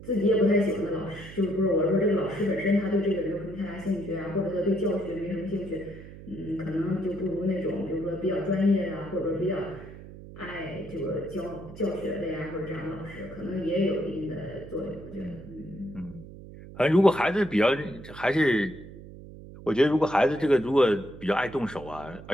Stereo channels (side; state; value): right; noise; hum, 15 dB below the sound